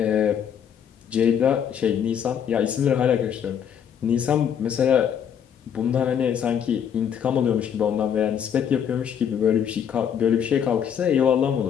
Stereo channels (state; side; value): quieter; right; 8.4 dB